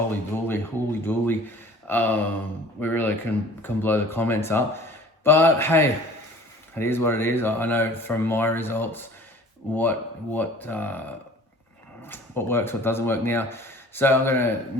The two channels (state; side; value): normal; both; correlation 0.47